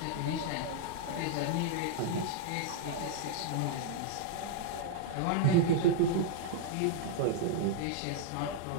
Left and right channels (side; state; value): both; different; correlation -0.01